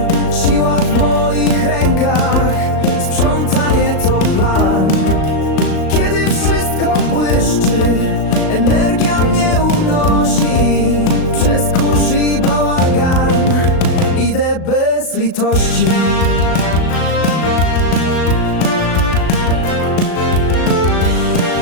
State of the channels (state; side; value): late; right; 37 ms